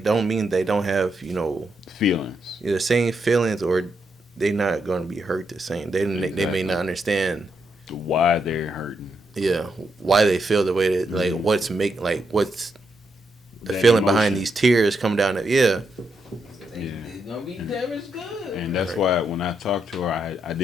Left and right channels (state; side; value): normal; both; correlation 0.81